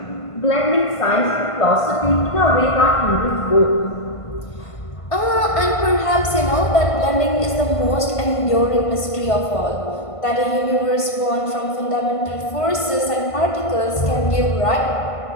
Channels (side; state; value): right; late; 1.5 ms